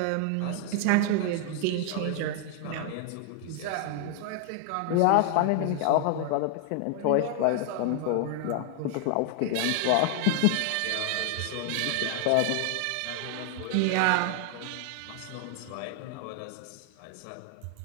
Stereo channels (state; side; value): different; both; correlation 0.00